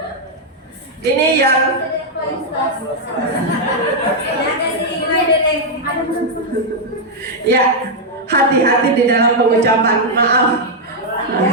ini yang ya, hati-hati di dalam pengucapan, maaf.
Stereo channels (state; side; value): normal; both; correlation -0.03